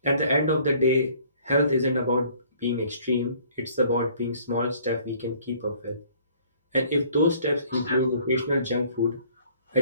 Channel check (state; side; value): inverted; both; correlation -0.56